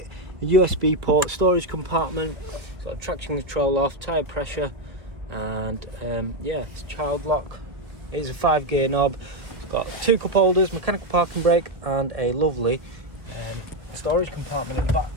USB port, storage compartment. It's got traction control off, tyre pressure, and yeah, it's child lock. It is a 5-gear knob. It's got 2 cup holders, mechanical parking brake and a lovely storage compartment in the back.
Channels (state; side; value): late; left; 1.5 ms